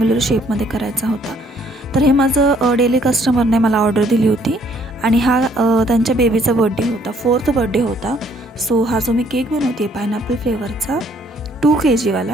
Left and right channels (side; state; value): both; normal; correlation 0.64